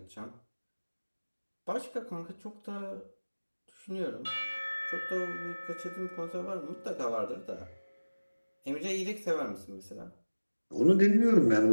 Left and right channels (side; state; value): both; inverted; correlation -1.00